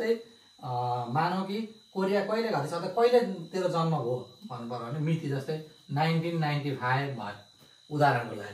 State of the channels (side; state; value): both; identical; correlation 1.00